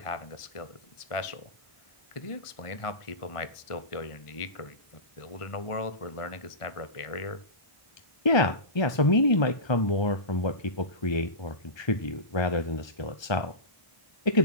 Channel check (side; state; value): right; late; 1.2 ms